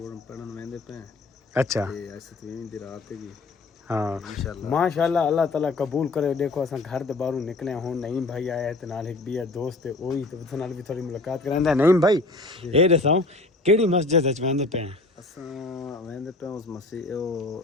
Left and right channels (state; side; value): quieter; right; 3.2 dB